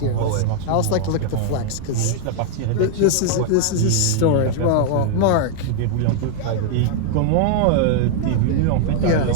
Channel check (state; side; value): different; both; correlation 0.00